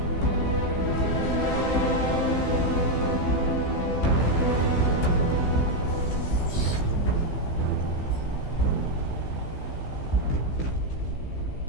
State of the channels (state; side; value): late; right; 15 ms